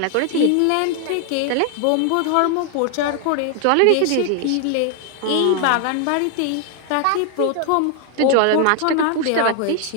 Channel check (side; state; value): both; different; correlation 0.00